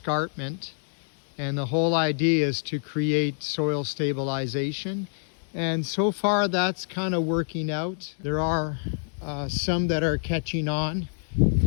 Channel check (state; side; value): silent; right; digital silence